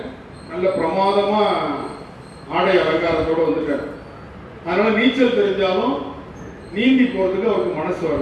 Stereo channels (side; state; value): both; identical; correlation 1.00